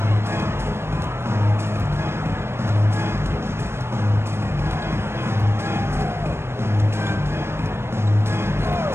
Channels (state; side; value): late; left; 0.12 ms